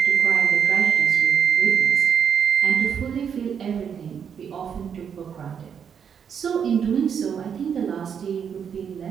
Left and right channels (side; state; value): left; quieter; 7.5 dB